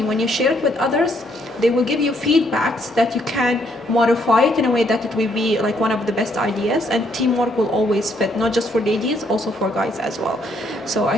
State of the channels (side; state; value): both; normal; correlation 0.70